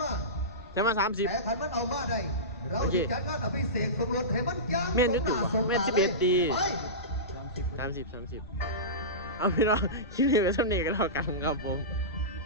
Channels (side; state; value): left; noise; rumble, 18 dB below the sound